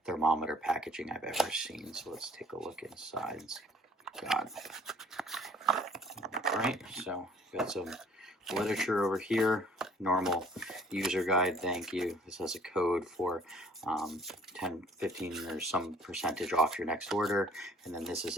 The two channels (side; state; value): both; normal; correlation 0.56